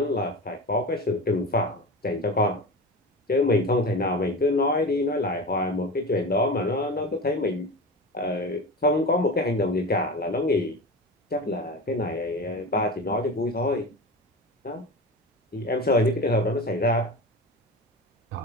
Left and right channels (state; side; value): normal; both; correlation 0.28